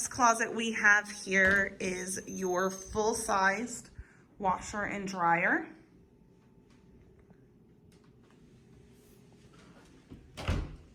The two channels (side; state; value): both; identical; correlation 1.00